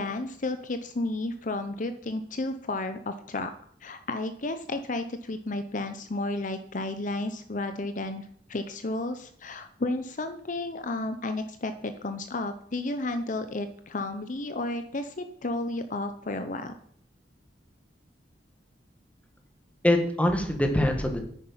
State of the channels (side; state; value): both; normal; correlation 0.59